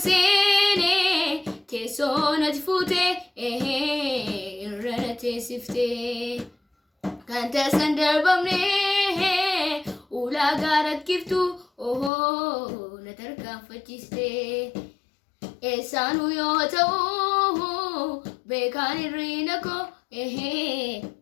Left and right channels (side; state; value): right; drops out; at 12.1 s